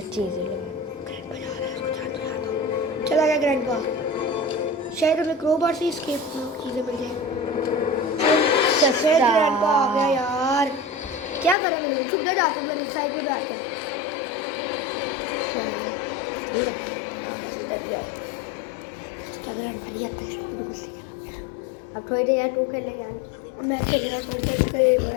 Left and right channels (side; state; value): right; drops out; at 11.6 s